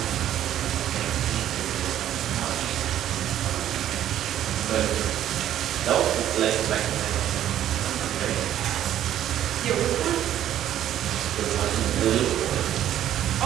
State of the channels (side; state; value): left; quieter; 11.5 dB